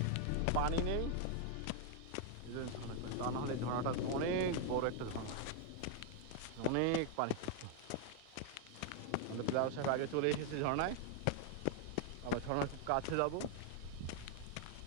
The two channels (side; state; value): both; different; correlation 0.00